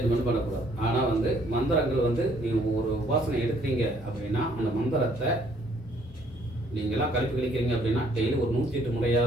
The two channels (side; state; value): both; normal; correlation 0.64